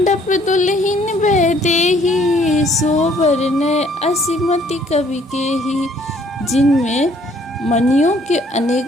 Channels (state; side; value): normal; both; correlation 0.62